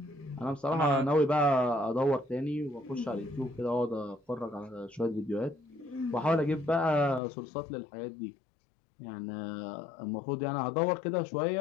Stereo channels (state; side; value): drops out; right; at 7.2 s